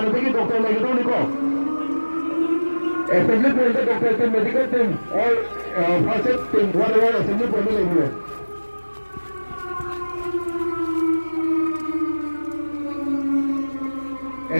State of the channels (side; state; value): both; inverted; correlation -1.00